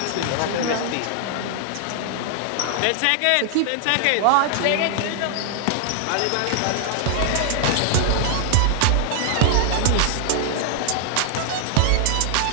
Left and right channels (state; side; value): different; both; correlation -0.01